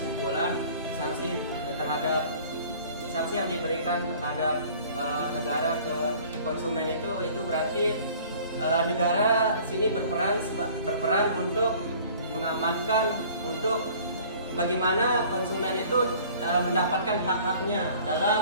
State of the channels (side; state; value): both; inverted; correlation -0.50